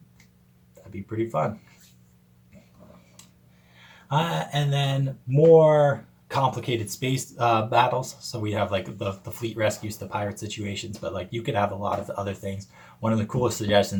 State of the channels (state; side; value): identical; both; correlation 1.00